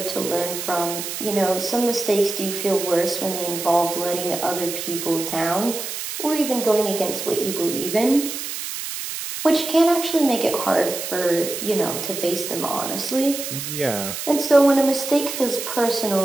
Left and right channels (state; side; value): noise; right; hiss, 6 dB below the sound